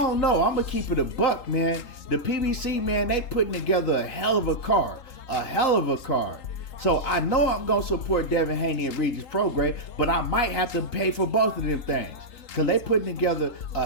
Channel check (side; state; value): right; late; 3.8 ms